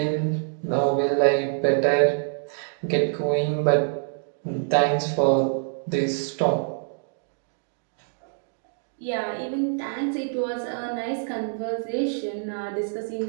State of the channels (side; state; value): left; silent; digital silence